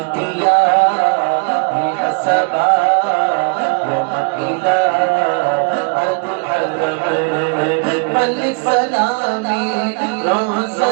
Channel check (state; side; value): quieter; left; 35.4 dB